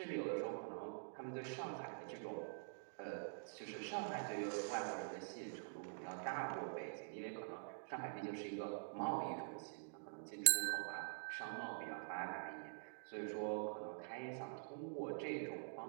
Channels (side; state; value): left; silent; digital silence